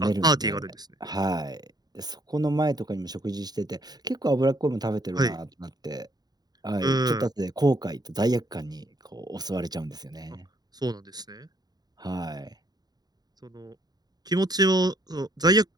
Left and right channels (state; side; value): late; left; 0.19 ms